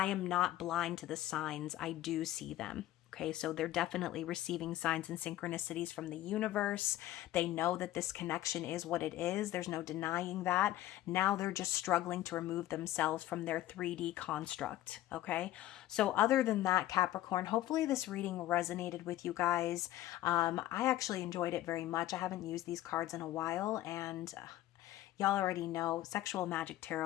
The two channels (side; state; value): right; quieter; 14.6 dB